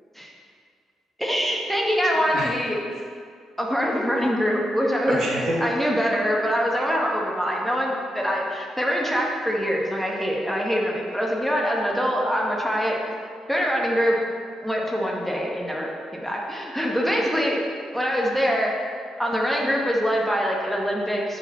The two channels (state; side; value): normal; both; correlation 0.86